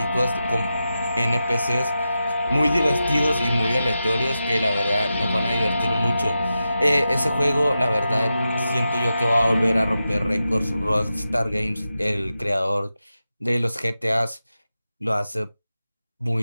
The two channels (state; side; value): inverted; both; correlation -0.91